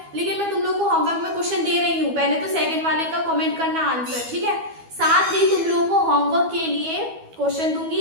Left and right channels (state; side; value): late; left; 12 ms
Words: लेकिन मैं तुम लोग को होमवर्क में क्वेश्चन दे रही हूँ। पहले तो सेकंड वाले का कमेंट करना आंसर, ठीक है। साथ ही तुम लोगों को होमवर्क के लिए क्वेश्चन